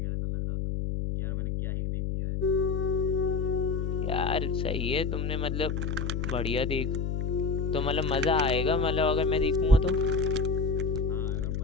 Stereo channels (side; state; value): left; noise; hum, 1 dB below the sound